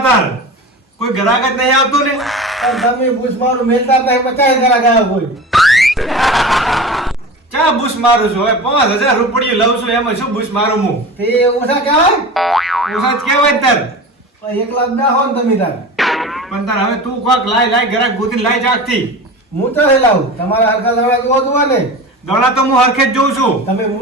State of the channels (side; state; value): both; normal; correlation 0.33